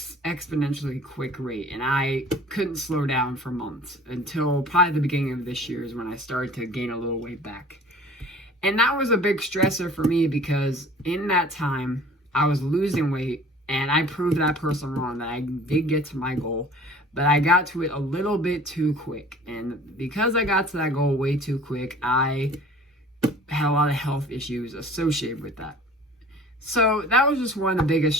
quick rate, and I couldn't slow down for months until probably the beginning of this year is when I started to gain a little weight back. And that was a big stressor for me because in that time I was losing weight, and I proved that person wrong, that I did get to my goal, but I got to it a little bit too quick. And because I got to that goal way too quick, I had a lot of health issues associated with that. So that was just one of the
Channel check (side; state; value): both; normal; correlation 0.47